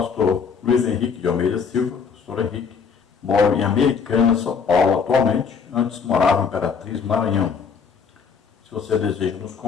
Luiz Henrique de Almeida Silva, pastor Henrique. Moro em Americana, São Paulo atualmente. Antes morava em Imperatriz, Maranhão. Se você deseja nos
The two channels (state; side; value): quieter; right; 5.9 dB